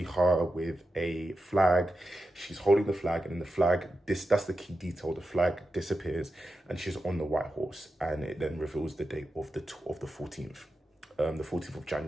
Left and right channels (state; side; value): normal; both; correlation 0.90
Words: her with a flag. She's holding the flag, and then the flag, that's the key detail, the flag disappears, and she's on the white horse, and it then reveals the date of the 14th. The 14th of